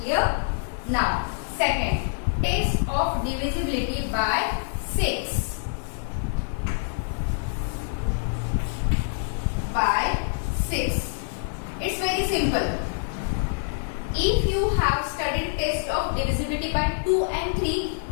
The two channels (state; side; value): silent; right; 61 dB below the other